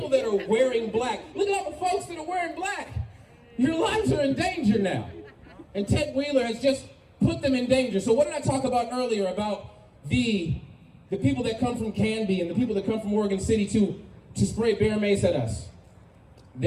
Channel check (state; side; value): identical; both; correlation 1.00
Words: that are wearing black. Look at all the folks that are wearing black. Your lives are in danger now. And Ted Wheeler has just put them in danger. So what did I talk about earlier about the people that come from Canby and the people that come from Oregon City to spray bear mace at us?